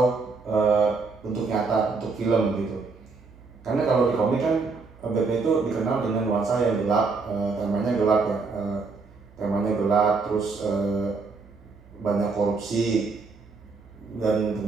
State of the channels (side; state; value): left; quieter; 4.3 dB